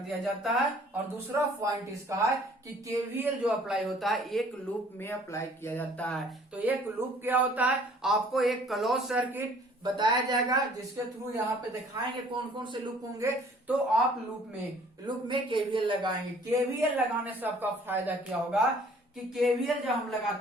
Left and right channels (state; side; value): normal; both; correlation 0.56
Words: जाता है। और दूसरा पॉइंट इसका है कि केवीएल जो अप्लाई होता है एक लूप में अप्लाई किया जाता है। तो एक लूप क्या होता है, आपको एक क्लोज सर्किट बताया जाएगा जिसके थ्रू यहाँ पे दिखाएंगे कौन कौन से लूप होंगे। तो आप लूप में केवीएल लगाएंगे। केवीएल लगाने से आपका फायदा क्या होगा कि केवीएल जब हम